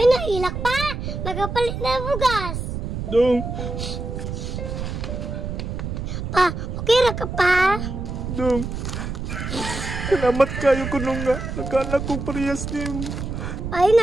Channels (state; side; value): noise; right; rumble, 5 dB below the sound